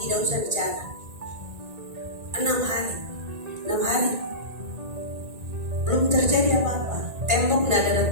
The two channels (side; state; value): left; late; 1.9 ms